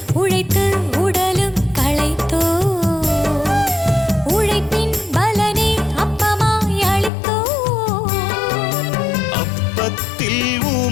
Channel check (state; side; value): drops out; right; at 7.1 s